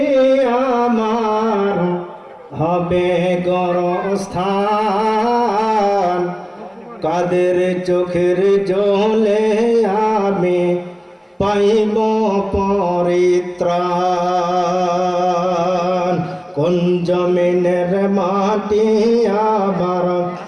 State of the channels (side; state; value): both; identical; correlation 1.00